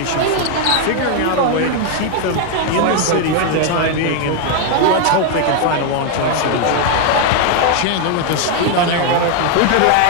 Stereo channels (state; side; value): different; both; correlation 0.00